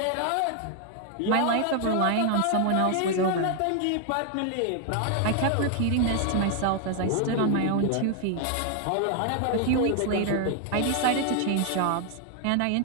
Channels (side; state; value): both; different; correlation 0.00